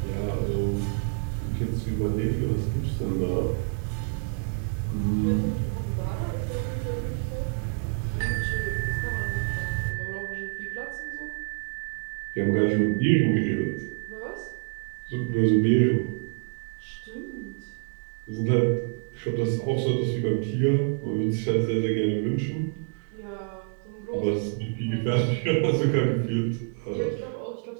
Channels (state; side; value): silent; left; digital silence